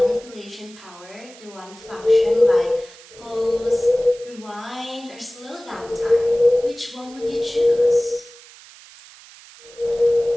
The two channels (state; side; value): noise; right; hiss, 21 dB below the sound